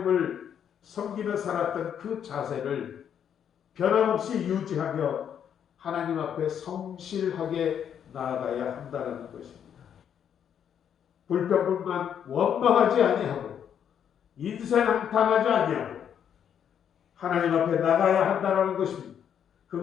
섬기며 살았던 그 자세를 변함없이 유지하며 하나님 앞에 성실하게 나아가야 한다는 것입니다. 불평불만 원망하지 아니하고 인생한탄하지 아니하고 하나님 앞에 나가야 한다는 것입니다.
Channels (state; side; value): quieter; right; 8.7 dB